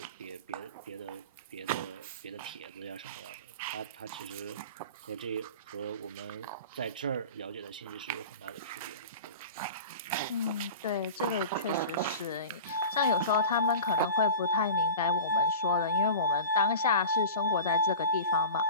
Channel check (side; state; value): both; inverted; correlation -0.34